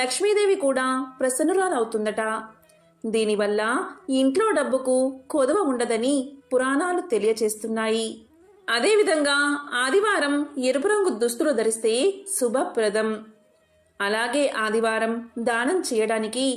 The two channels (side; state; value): both; identical; correlation 1.00